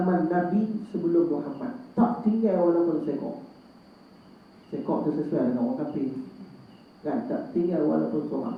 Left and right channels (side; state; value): both; identical; correlation 1.00